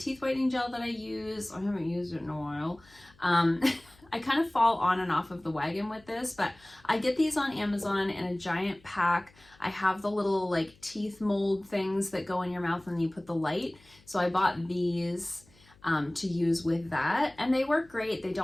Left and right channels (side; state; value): left; noise; hum, 28 dB below the sound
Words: whitening gel that I use. I haven't used it in a while. I kind of fall on and off of the wagon with this, but I get these on Amazon in a giant pack. I have the little like teeth mold things that go in your mouth and you put the light. So I bought these to use with that, and they work great. They